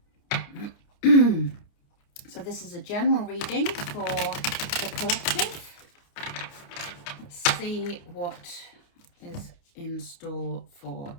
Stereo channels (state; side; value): late; right; 29 ms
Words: So this is a general reading for the collective. Let's see what is in store for